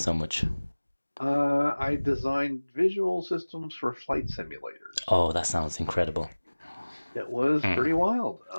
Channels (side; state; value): both; inverted; correlation -1.00